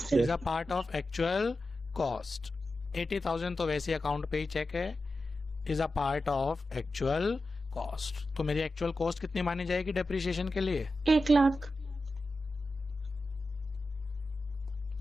is a part of actual cost. 80,000 तो वैसे अकाउंट पे ही चेक है, is a part of actual cost. तो मेरी एक्चुअल कॉस्ट कितनी मानी जाएगी डेप्रिसिएशन के लिए? 1 लाख।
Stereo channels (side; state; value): both; normal; correlation 0.92